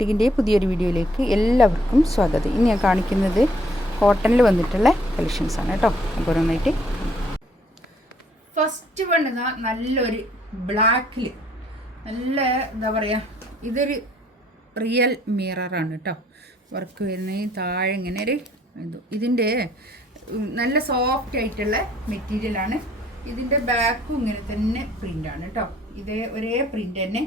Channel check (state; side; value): normal; both; correlation 0.64